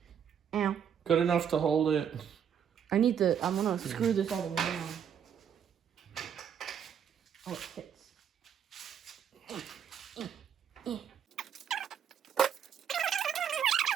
Ow. Good enough to hold it. I'm gonna screw this all the way down. Oh, it fits.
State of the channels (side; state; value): left; quieter; 8.3 dB